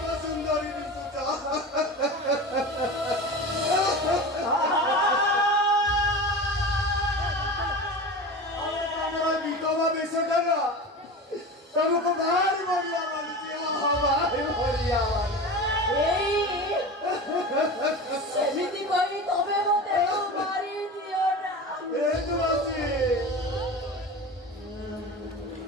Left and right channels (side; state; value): both; normal; correlation 0.30